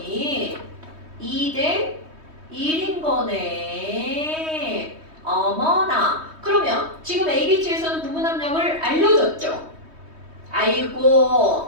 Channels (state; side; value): late; left; 3.2 ms